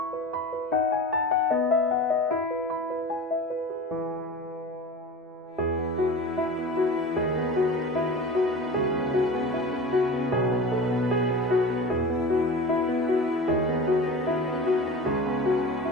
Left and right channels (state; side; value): normal; both; correlation 0.34